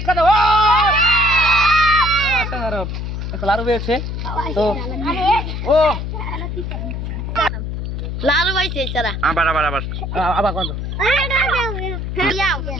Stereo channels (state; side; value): noise; left; hum, 4 dB below the sound